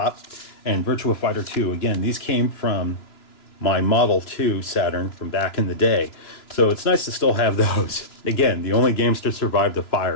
and Virtua Fighter 2. Again, these came from my Model 2 Saturn from back in the day. So it's nice to still have those. Again, the only games to survive the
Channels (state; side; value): late; right; 3.0 ms